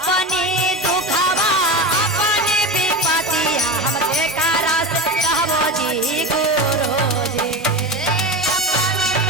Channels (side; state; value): both; normal; correlation 0.24